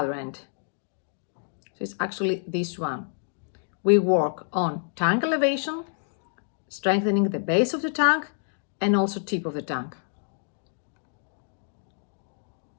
end. So it's actually this one. We work on tongue elevation, strengthening the base of the tongue and also tip of the tongue.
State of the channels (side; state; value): right; silent; digital silence